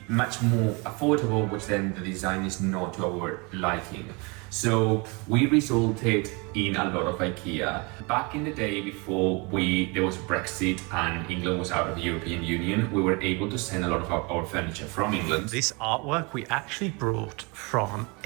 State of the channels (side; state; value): left; quieter; 29.3 dB